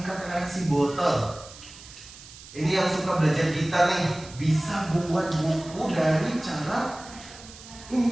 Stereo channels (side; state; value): right; noise; hiss, 18 dB below the sound